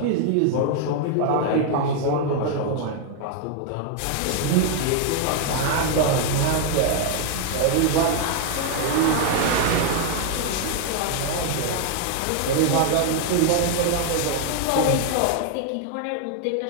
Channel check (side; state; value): both; different; correlation 0.00